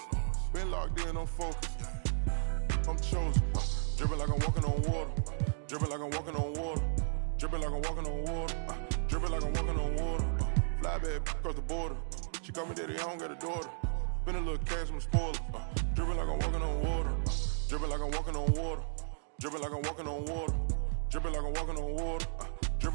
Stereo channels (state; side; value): silent; left; 55 dB below the other